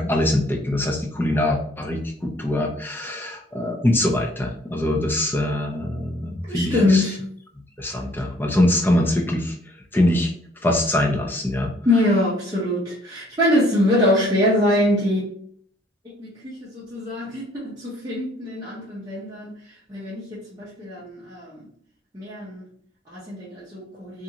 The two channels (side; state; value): both; normal; correlation 0.62